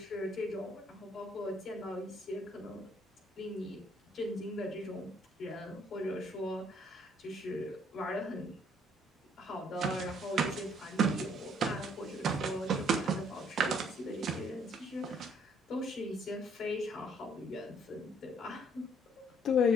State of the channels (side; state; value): both; normal; correlation 0.64